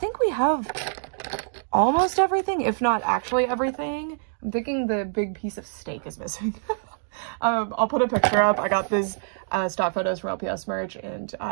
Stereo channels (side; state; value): left; silent; digital silence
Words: we have almost everything, if not actually everything. I'm thinking the big piece of steak is missing. I'll put a picture up. I got these stock photos from LPS merch, and